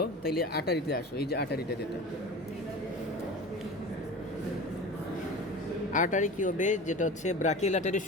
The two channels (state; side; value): normal; both; correlation 0.34